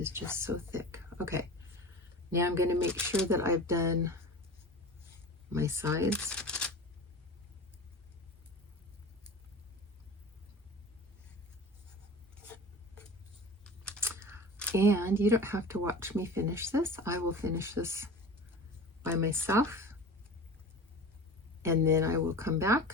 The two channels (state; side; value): normal; both; correlation 0.35